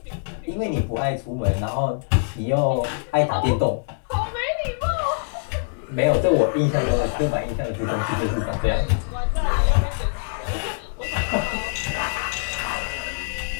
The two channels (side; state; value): right; silent; digital silence